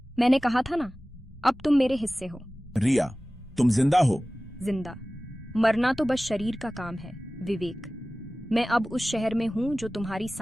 मैंने कहा था ना, अब तुम मेरे हिस्से हो। रिया, तुम जिंदा हो? जिंदा मरना तो बस शरीर का काम है विवेक। मैं अब उस शहर में हूं जो तुम्हारी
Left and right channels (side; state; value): both; normal; correlation 0.97